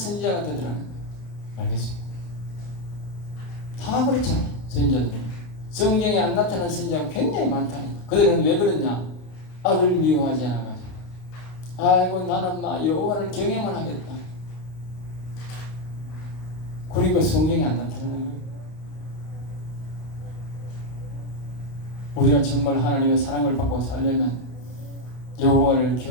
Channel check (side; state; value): right; late; 32 ms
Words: 되더라는 거예요. 알겠습니까? 다 그렇잖아요. 선지자들. 성경에 안 나타나는 선지자가 굉장히 많다는 거예요. 그들은 왜 그러냐? 악을 미워하지 않아가지고. 아이고 나는 막 여호와를 경외만 하겠다. 그리고 성경에 안 나타나는 거예요. 우리가 정말 하나님의 사랑을 받고 살려면 여호와를